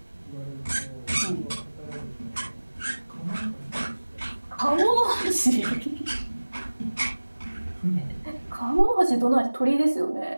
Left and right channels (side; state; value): both; inverted; correlation -1.00